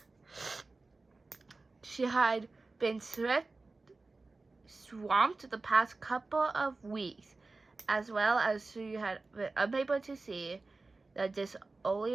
She had been swamped the past couple of weeks, as well as she had been unable to see the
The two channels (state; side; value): quieter; left; 3.5 dB